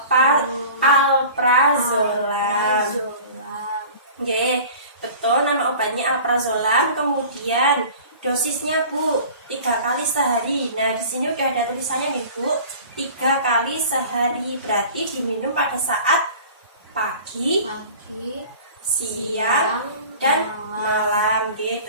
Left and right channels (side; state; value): both; inverted; correlation -0.42